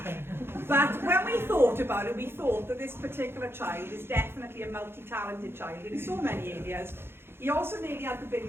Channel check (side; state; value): left; late; 0.11 ms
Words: But when we thought about it, we thought that this particular child is definitely a multi-talented child in so many areas. He also nearly had the Billy